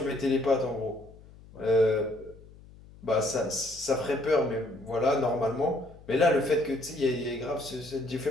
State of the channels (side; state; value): left; noise; hum, 22 dB below the sound